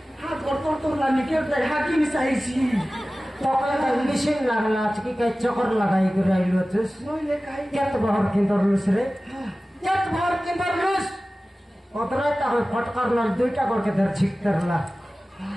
हाथ कर तोर लानी के दे हाकी मिसाईছি তকলে মেশিন লাগলা আজকে কে চকর লাগাই করে আইলো তুস নইলে কাই কেত বহর কিন্দর লুস রে কেত বহর কিন্দর লুস অতরাইটা হয় ফটকার নল দুইটা করকে ধর ছিকতরলা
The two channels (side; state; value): both; normal; correlation 0.97